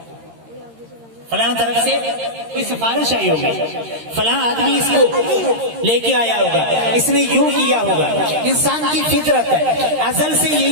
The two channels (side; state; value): left; late; 13 ms